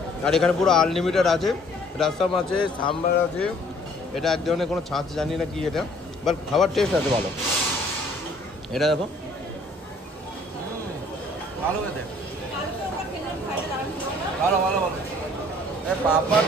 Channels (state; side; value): normal; both; correlation 0.58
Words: আর এখানে পুরো আনলিমিটেড আছে, রাসাম আছে, সাম্বার আছে। এটা এক ধরনের কোনো ছাঁচ জানি না কি এটা, বাট খাবার টেস্ট আছে ভালো। এটা দেখো ভালো খেতে, ভালো।